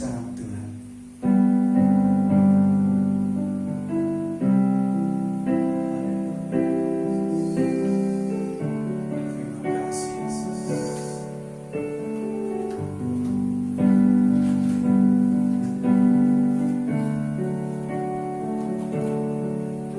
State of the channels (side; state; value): both; identical; correlation 1.00